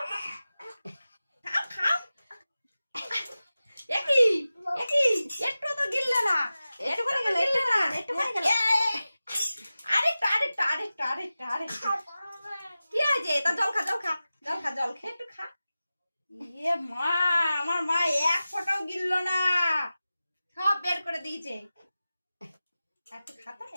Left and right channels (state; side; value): inverted; both; correlation -0.95